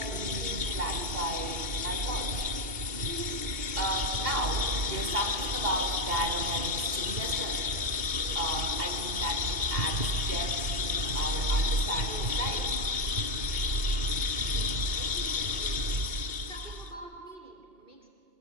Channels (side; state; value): left; late; 2.7 ms